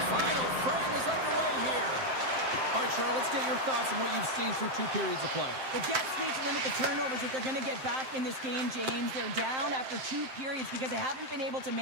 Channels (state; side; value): late; left; 7.7 ms